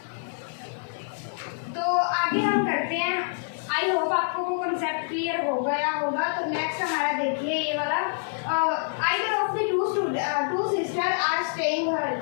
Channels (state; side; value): silent; right; digital silence